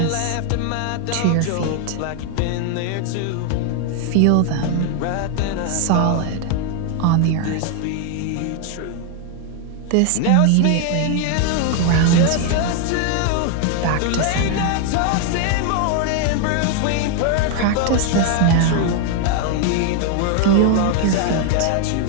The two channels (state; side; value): different; both; correlation 0.00